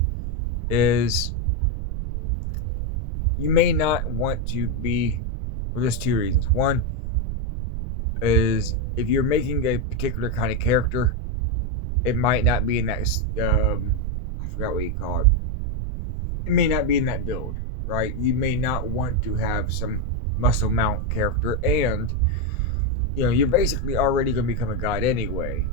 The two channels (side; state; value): right; noise; rumble, 2 dB below the sound